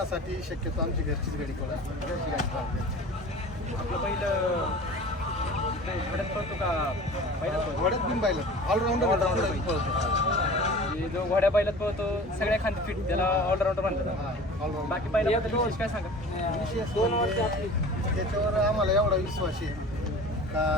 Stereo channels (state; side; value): normal; both; correlation 0.40